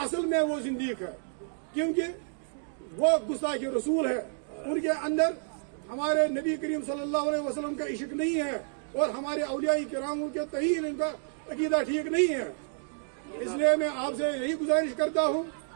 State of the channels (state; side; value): silent; left; digital silence